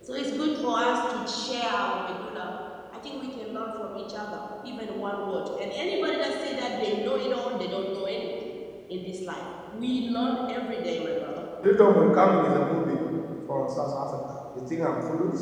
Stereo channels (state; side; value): identical; both; correlation 1.00